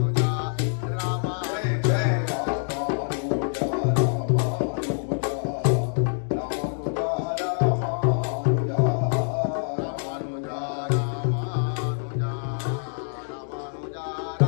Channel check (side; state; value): right; silent; digital silence